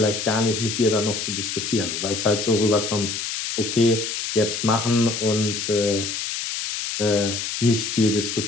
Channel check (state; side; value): noise; left; hiss, 4 dB below the sound